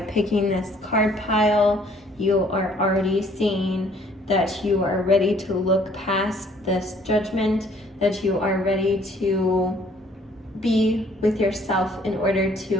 this card pile, you are already seeing that you are ready to look past this judgment, that you are ready to be with yourself in order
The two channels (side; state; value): both; normal; correlation 0.60